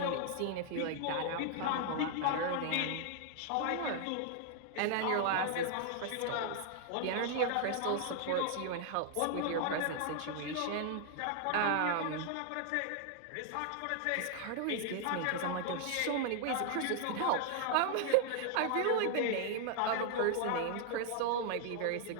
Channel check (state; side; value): different; both; correlation 0.00